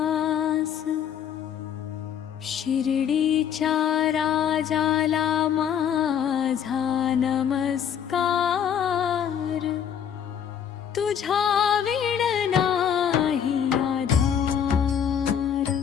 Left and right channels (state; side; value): quieter; right; 8.6 dB